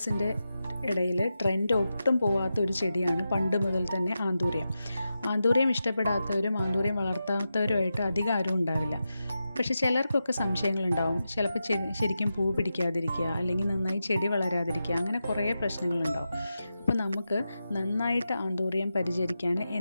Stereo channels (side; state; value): both; inverted; correlation -0.90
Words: ഇടയിൽ ട്രെൻഡ് ഒട്ടും പോവാത്ത ഒരു ചെടിയാണ് പണ്ട് മുതൽ തന്നെ ആന്തൂറിയം. ആന്തൂറിയം ഇഷ്ടപ്പെടാത്തവരും ആന്തൂറിയം വളർത്താത്തവരുമായിട്ട് അധികം ആരും ഉണ്ടാവില്ല. പക്ഷേ ചിലർക്കൊക്കെ സംശയങ്ങളുണ്ടാവും. ചിലപ്പോൾ ശരിക്കും പൂ പിടിക്കാതിരിക്കുക, അല്ലെങ്കിൽ നന്നായി ചെടി വളരാതിരിക്കുക, അങ്ങനെ കുറേ പ്രശ്നങ്ങളുണ്ടാവും. അപ്പോൾ നമുക്ക് നന്നായിട്ട് ആന്തൂറിയം പരിചരിക്കാൻ